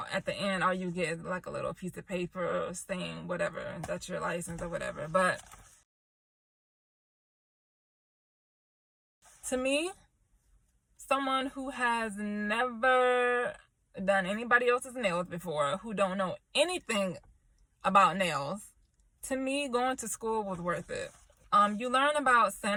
the end, all you get is like a little piece of paper saying whatever, that's your license or whatever. But to me, someone who has never done anybody else's nails before, who don't know anything about nails, to me, going to school was worth it. You learn about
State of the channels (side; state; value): both; identical; correlation 1.00